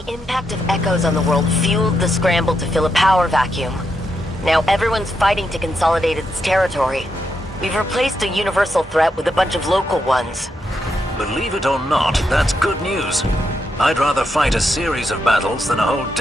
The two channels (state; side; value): normal; both; correlation 0.82